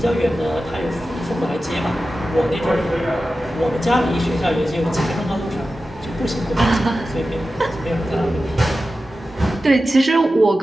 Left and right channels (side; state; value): both; normal; correlation 0.93